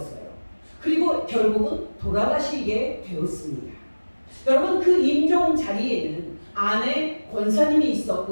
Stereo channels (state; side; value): inverted; both; correlation -1.00